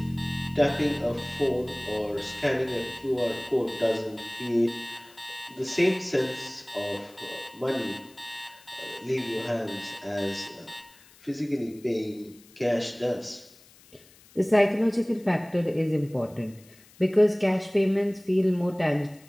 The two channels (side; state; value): left; noise; hiss, 26 dB below the sound